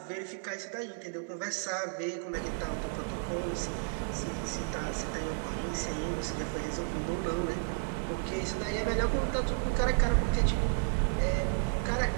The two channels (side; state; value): left; silent; 56 dB below the other